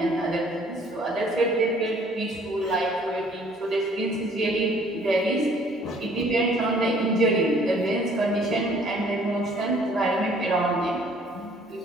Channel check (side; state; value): both; normal; correlation 0.58